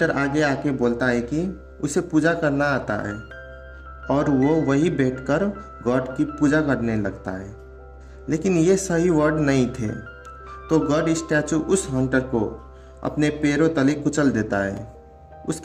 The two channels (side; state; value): both; identical; correlation 1.00